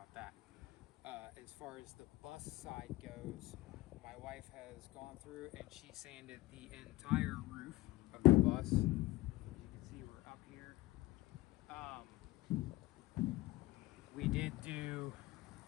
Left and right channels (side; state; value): right; quieter; 18.9 dB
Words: that. As far as the bus side goes, my wife has gone through and she sanded the entire roof of the bus. As you can see, we're up here. We did do